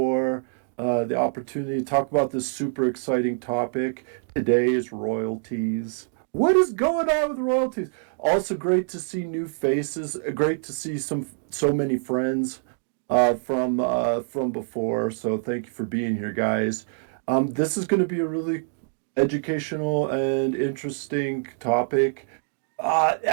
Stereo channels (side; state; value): left; silent; digital silence